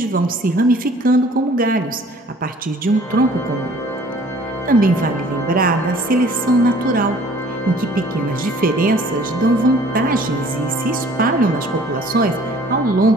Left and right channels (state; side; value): normal; both; correlation 0.53